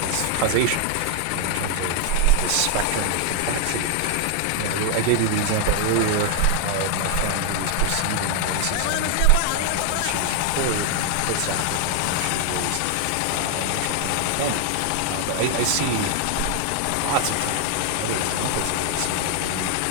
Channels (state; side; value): different; both; correlation 0.00